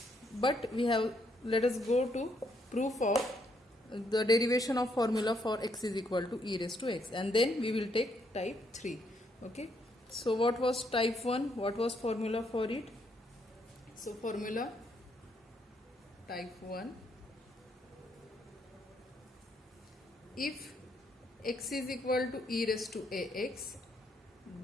but let us go to proof of the derivation of formula for x is equal to e raised to x, and then we will take type 3. Okay, so what was type 1, what was formula for it? So formula type 1, if x is equal to e raised to ax,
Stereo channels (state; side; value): normal; both; correlation 0.73